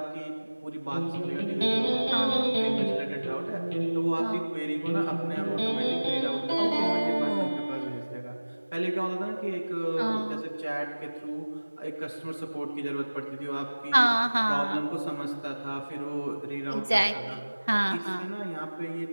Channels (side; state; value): both; inverted; correlation -1.00